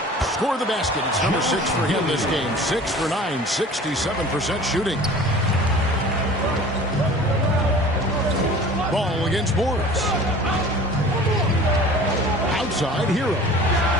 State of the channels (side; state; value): both; normal; correlation 0.43